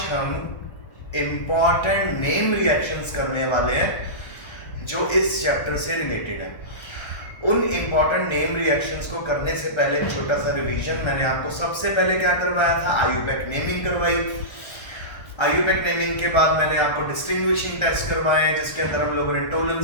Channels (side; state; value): right; late; 1.3 ms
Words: हम इंपॉर्टेंट नेम रिएक्शंस करने वाले हैं जो इस चैप्टर से रिलेटेड है। उन इंपॉर्टेंट नेम रिएक्शंस को करने से पहले एक छोटा सा रिवीजन। मैंने आपको सबसे पहले क्या करवाया था, आईयूपैक नेमिंग करवाई। आईयूपैक नेमिंग के बाद मैंने आपको डिस्टिंग्विशिंग टेस्ट करवाए, जिसके अंदर हम लोगों ने टोलेंस